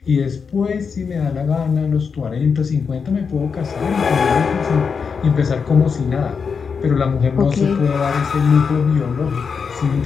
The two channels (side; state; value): right; quieter; 5.8 dB